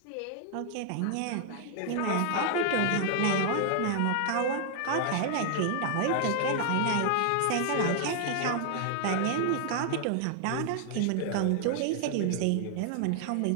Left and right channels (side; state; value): both; different; correlation 0.00